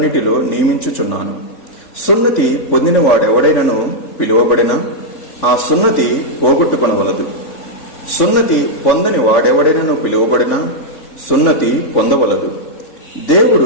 నియమించుచున్నాను. సున్నతి పొందిన వాడెవడైనను పిలువబడినా ఆ సున్నతి పోగొట్టుకొనవలదు. సున్నతి పొందని వాడెవడైనను పిలువబడినా సున్నతి పొందవలదు.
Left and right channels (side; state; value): right; late; 3.4 ms